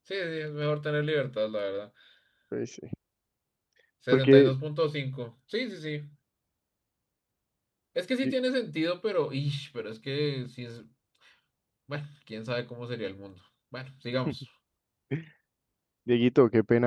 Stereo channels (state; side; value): identical; both; correlation 1.00